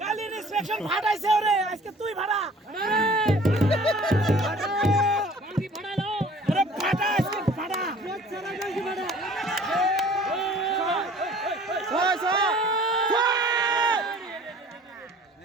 কালি ইনস্পেকশন ফাটাইছে ওরে আজকে তুই ভাড়া মারবি ফাটাইলো আরে ফাটা আজকে ফাটা ছাড়া গাইছি ফাটা ছয় ছয়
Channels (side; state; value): both; normal; correlation 0.50